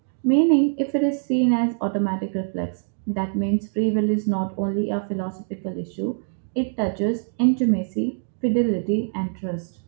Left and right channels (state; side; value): silent; left; digital silence